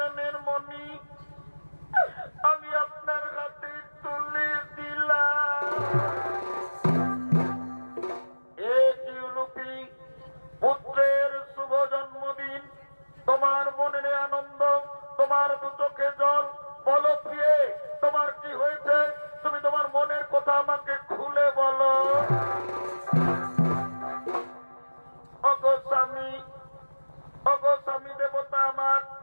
মণি আমি আপনার হাতে তুলে দিলাম। পুত্রের শুভ জন্মদিন, তোমার মনে নেই আনন্দ, তোমার দু চোখে জল। বলো প্রিয়ে, তোমার কি হয়েছে? তুমি তোমার মনের কথা আমাকে খুলে বলো। ওগো স্বামী দেবতা আমার,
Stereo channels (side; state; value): both; inverted; correlation -1.00